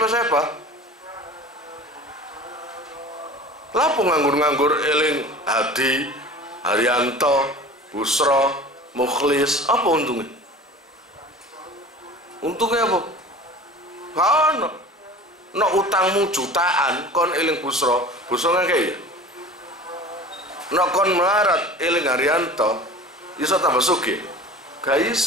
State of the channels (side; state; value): both; normal; correlation 0.39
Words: Lapo nganggur-nganggur eling Hadi, Haryanto, Busro, Mukhlis, apa untungnya? Untungnya apa? Ono. No utangmu jutaan kon eling Busro kan kayak ya. No kon melarat eling Haryanto iso tambah sugih. Gak